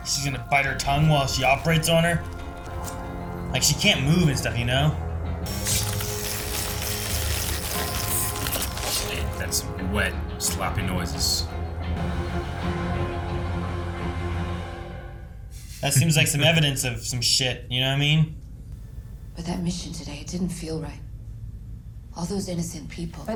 She's gonna bite her tongue while she operates on her. Like she can't move and stuff, you know? That's wet, sloppy noises. That seems like some evidence of some shit, you know what I mean? But that mission today, it didn't feel right. All those innocent people.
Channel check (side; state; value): both; identical; correlation 1.00